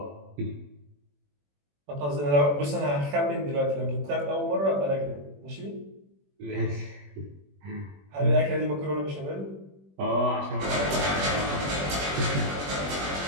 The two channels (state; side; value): late; left; 21 ms